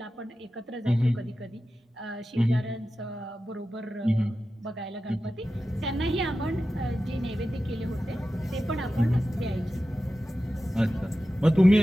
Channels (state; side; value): normal; both; correlation 0.93